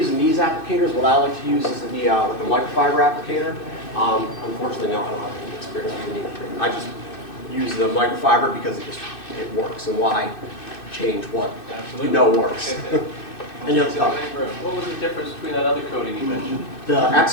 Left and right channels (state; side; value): late; right; 2.6 ms